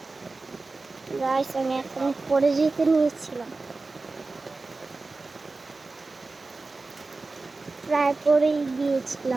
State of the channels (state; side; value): quieter; left; 3.6 dB